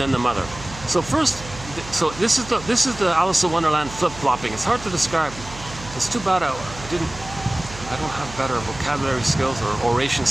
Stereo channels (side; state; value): right; noise; hum, 15 dB below the sound